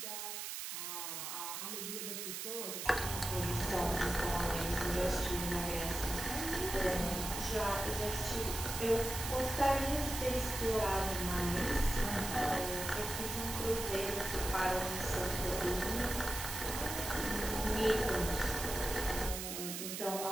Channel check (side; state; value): right; noise; hiss, 5 dB below the sound